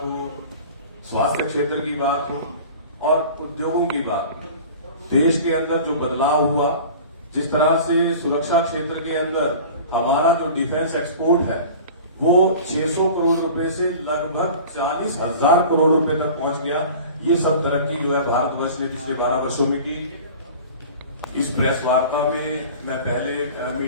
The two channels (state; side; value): inverted; both; correlation -0.40